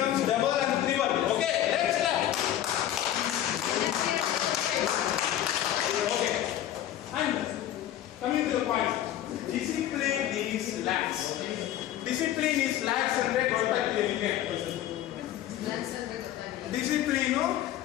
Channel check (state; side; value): quieter; right; 12.2 dB